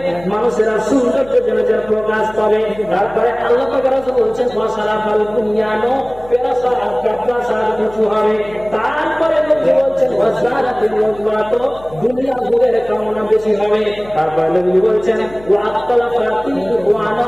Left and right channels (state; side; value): noise; left; hum, 21 dB below the sound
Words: মানুষেরা সৌন্দর্য জনজের প্রকাশ পাবে। তারপরে আল্লাহ পাক রাসূল বলছেন ওয়াসারাফাল বুনিয়ানো, প্রাসাদ উঁচু হবে। তারপরে নবী বলছেন ওয়াজারাতিল ওয়াজওয়াত, দুনিয়া ভোগের কামনা বেশি হবে। তারপরে নবী বলছেন ওয়াক্তালাফাতিল ওয়ানা,